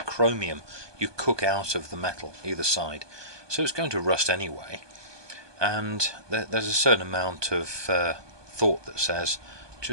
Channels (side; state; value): left; late; 1.2 ms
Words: you cook out of the metal either side, so it's going to rust anyway. And there's a certain amount of thought that says